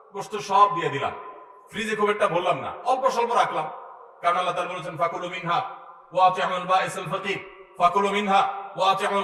গোশত সব দিয়ে দিলাম, ফ্রিজে খুব একটা ভরলাম না, অল্প স্বল্প রাখলাম, কারণ আল্লাহ তাআলা বলেছেন ফাকুলু মিনহা ওয়া আতিউল বাঈসাল ফাকির ফাকুলু মিনহা ওয়া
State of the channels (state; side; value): identical; both; correlation 1.00